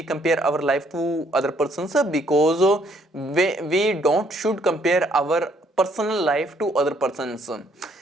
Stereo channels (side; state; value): both; normal; correlation 0.66